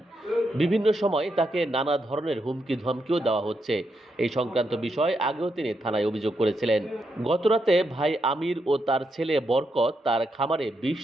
বিভিন্ন সময় তাকে নানা ধরনের হুমকি ধমকিও দেওয়া হচ্ছে। এই সংক্রান্ত বিষয় আগেও তিনি থানায় অভিযোগ করেছিলেন। গতরাতে ভাই আমির ও তার ছেলে বরকত তার খামারে বিষ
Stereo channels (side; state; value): both; normal; correlation 0.82